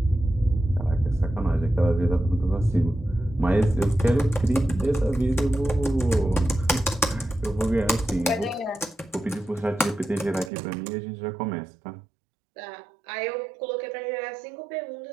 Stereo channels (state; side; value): drops out; left; at 10.5 s